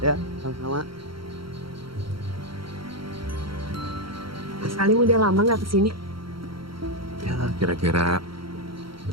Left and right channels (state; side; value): late; left; 0.74 ms